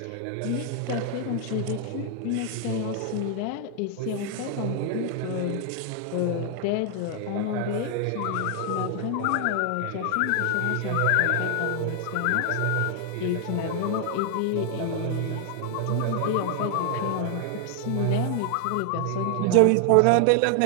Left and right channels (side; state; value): both; different; correlation 0.00